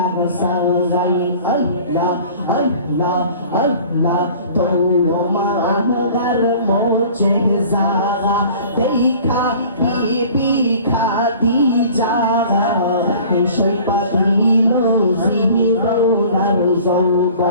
সাই, আল্লাহ আল্লাহ আল্লাহ। তোমার মোচে জাগা দেখা বিবি খাদিজা সই পাদিল জীবনার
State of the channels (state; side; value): inverted; both; correlation -0.47